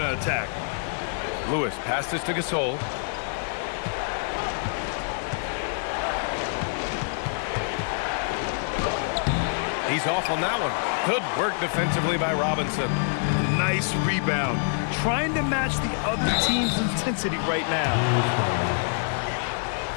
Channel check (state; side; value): silent; right; digital silence